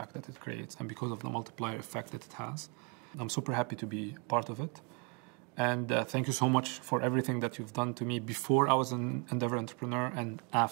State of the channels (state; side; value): quieter; left; 30.8 dB